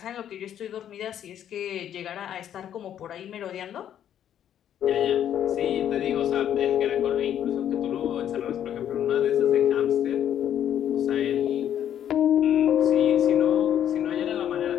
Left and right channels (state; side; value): quieter; right; 10.2 dB